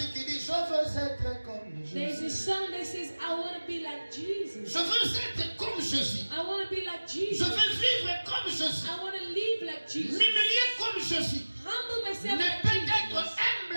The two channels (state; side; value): inverted; both; correlation -1.00